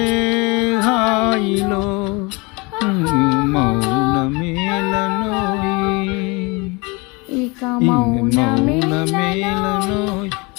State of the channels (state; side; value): quieter; right; 27.2 dB